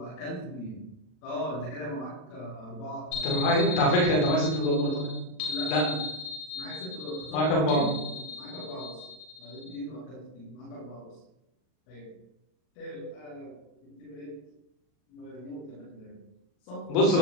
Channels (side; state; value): right; late; 40 ms